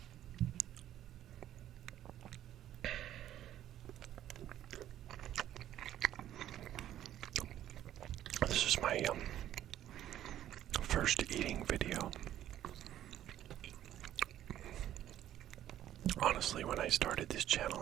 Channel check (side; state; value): left; quieter; 12.0 dB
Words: This is my first eating video. Honestly, when I started this channel,